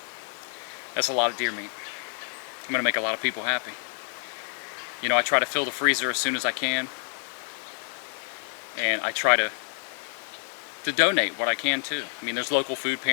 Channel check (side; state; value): right; silent; 59 dB below the other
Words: That's a lot of deer meat. I'm gonna make a lot of people happy. You know, I try to fill the freezer as soon as I can. And I try to donate what I can too. I mean, there's local food